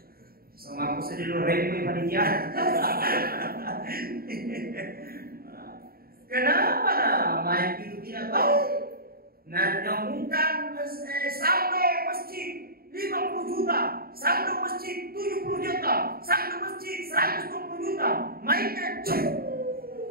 Sama aku sedih lu repot panitia. Kenapa main itu tidak tahu? Nah, nyambungkan saldo masjid 50 juta, saldo masjid 70 juta, saldo masjid 120 juta, mainnya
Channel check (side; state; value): left; late; 0.44 ms